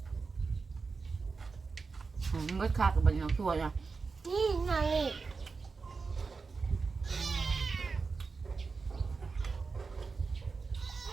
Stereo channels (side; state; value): left; quieter; 4.6 dB